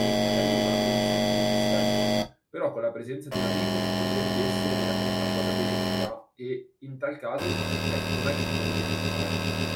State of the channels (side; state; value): both; identical; correlation 1.00